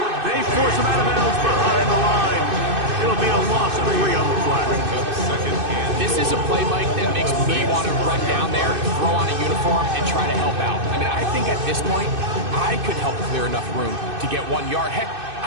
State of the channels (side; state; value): left; late; 2.6 ms